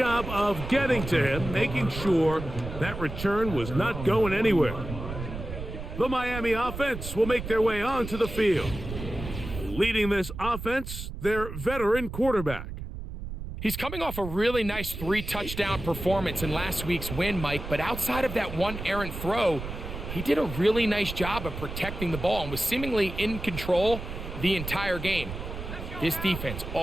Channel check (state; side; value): noise; right; rumble, 8 dB below the sound